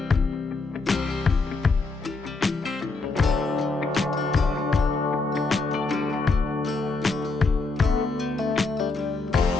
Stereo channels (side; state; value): right; quieter; 3.7 dB